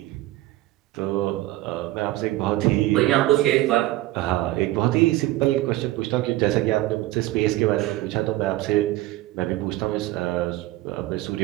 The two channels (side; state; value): left; quieter; 17.2 dB